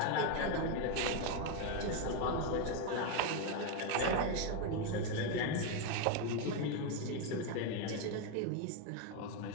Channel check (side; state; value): both; different; correlation 0.02